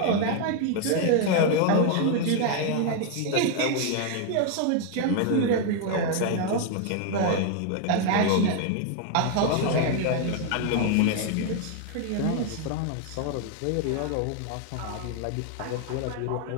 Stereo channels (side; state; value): both; different; correlation 0.01